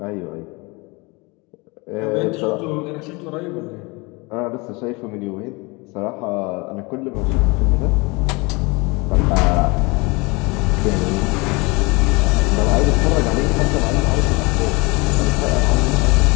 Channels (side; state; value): right; quieter; 26.7 dB